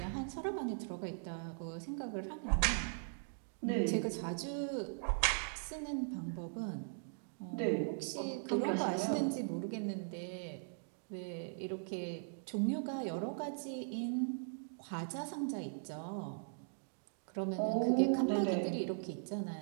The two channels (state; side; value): silent; left; digital silence